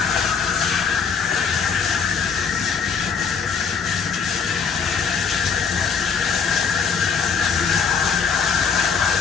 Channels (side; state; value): right; quieter; 6.2 dB